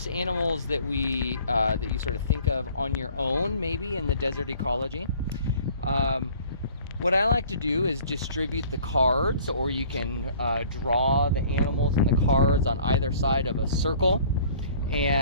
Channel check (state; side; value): inverted; both; correlation -0.52